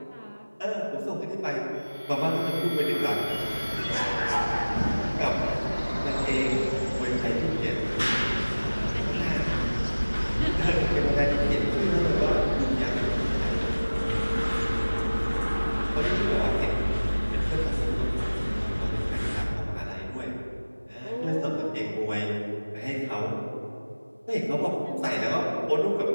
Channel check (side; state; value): both; inverted; correlation -1.00